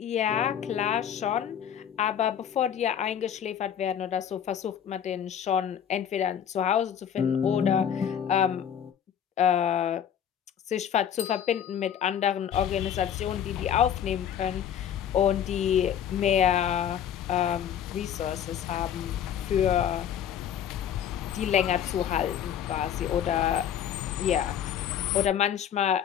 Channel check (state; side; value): quieter; right; 9.1 dB